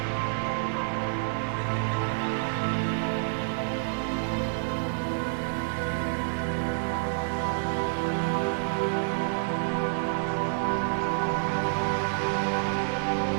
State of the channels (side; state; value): left; silent; digital silence